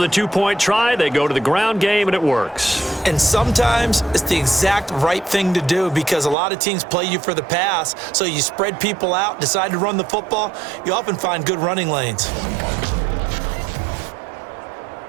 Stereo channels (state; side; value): drops out; left; at 6.4 s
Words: 2-point try. They go to the ground game, and it works. And sometimes it's the exact right thing to do because a lot of teams play you for the pass. So you spread people out, decide to run the football. You often find good running lanes.